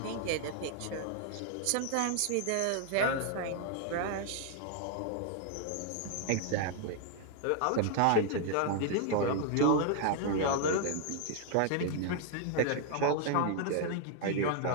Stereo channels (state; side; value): different; both; correlation 0.00